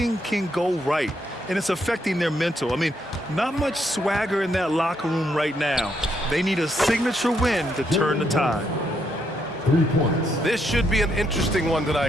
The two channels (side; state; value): both; normal; correlation 0.76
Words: can go right, and it's affecting their mental. I mean, not much swagger in that locker room right now. They need a signature win to turn the tide. 3 points. This should be an interesting one